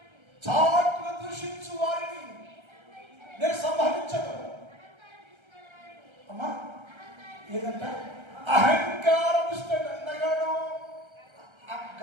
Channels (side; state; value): left; late; 1.3 ms